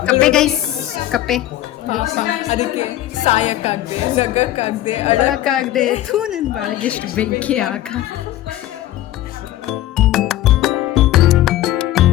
ಕಪ್ಪೆ ಗೈಸ್, ಕಪ್ಪೆ ಅದಕ್ಕೆ ಸಾಯಕ್ಕಾಗದೆ, ನಗಕ್ಕಾಗದೆ, ಅಳಕ್ಕಾಗದೆ ನನ್ನ ಬಾಳಿಗೆ ಎಷ್ಟು ಬೆಂಕಿ ಆಗ.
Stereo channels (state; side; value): quieter; right; 14.0 dB